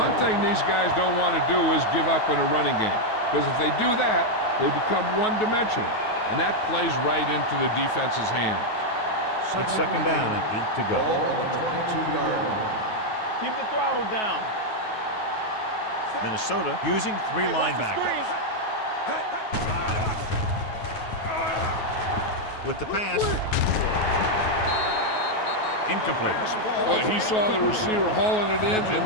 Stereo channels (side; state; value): right; late; 9.3 ms